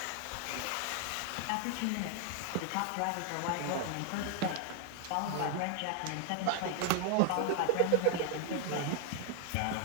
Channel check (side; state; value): both; different; correlation 0.00